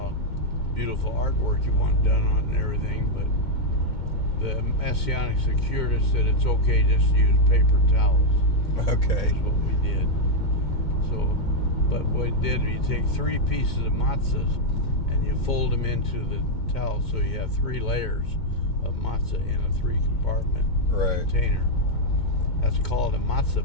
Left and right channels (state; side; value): late; right; 2.2 ms